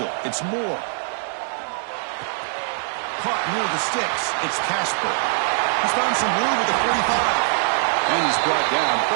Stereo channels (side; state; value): left; silent; digital silence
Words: It's Moore. Caught near the sticks. It's Casper. He's found some room with the 45. And he's brought down,